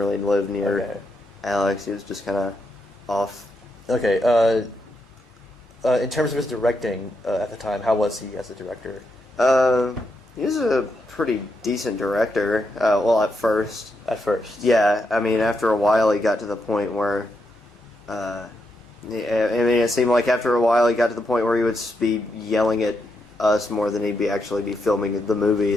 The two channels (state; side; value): normal; both; correlation 0.82